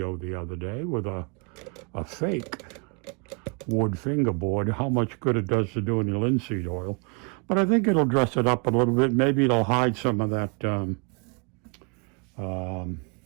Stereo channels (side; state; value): left; quieter; 37.0 dB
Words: the other day with a fake wood fingerboard, how much good it does to doing the linseed oil. But I think it'll dress it up a little bit. Maybe it'll hide some of that